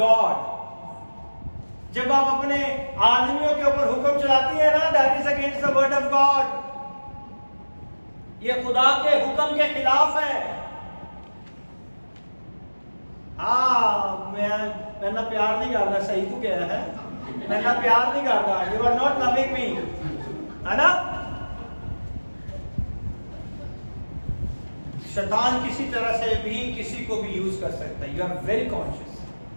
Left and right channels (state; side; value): inverted; both; correlation -1.00